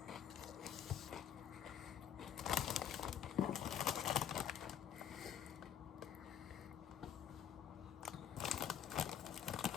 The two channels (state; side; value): quieter; right; 9.3 dB